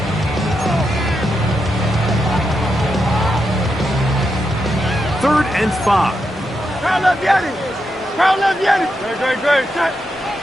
Third and 5. Crown left Yanni. Crown left Yanni. Great.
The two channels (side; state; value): both; normal; correlation 0.84